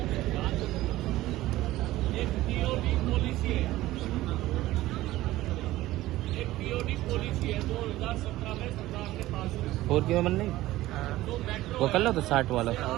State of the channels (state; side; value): quieter; left; 16.4 dB